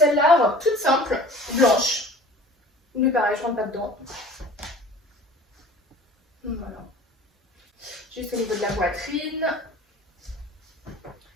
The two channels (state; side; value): normal; both; correlation 0.44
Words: robe toute simple, blanche. Mais pareil, je rentre pas dedans. Voilà. Juste au niveau de la poitrine.